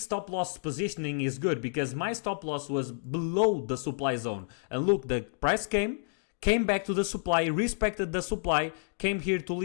stop loss positioning is good, because my stop loss was below the supply zone. And look, the price came back to the supply, respected the supply, came here to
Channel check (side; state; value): right; silent; digital silence